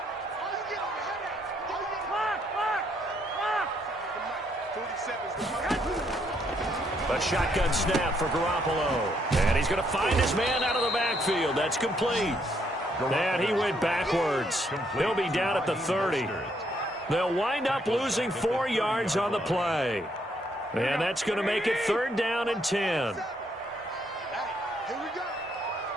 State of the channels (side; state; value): both; normal; correlation 0.72